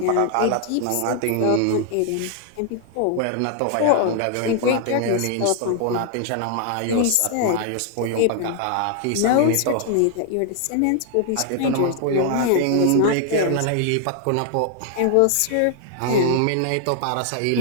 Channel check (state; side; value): different; both; correlation 0.00